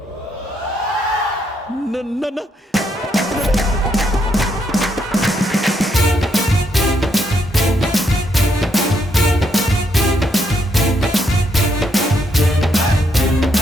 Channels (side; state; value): both; normal; correlation 0.76